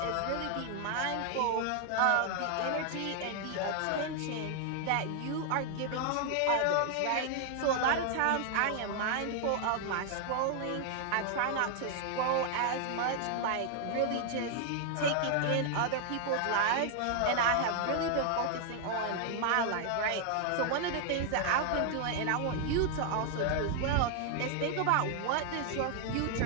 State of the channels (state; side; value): different; both; correlation 0.00